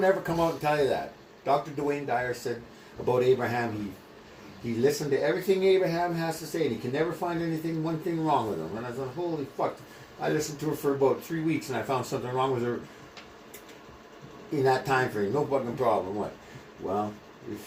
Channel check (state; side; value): identical; both; correlation 1.00